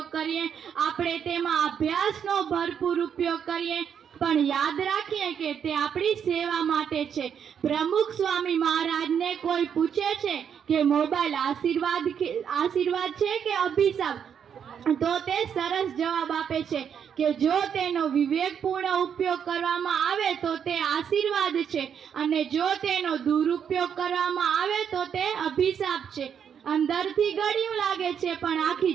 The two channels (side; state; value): left; quieter; 7.9 dB